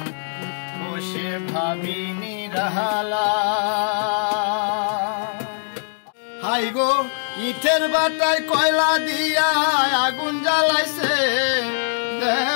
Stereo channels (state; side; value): silent; right; digital silence